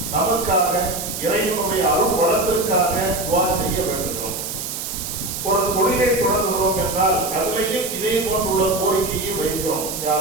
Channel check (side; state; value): right; noise; hiss, 6 dB below the sound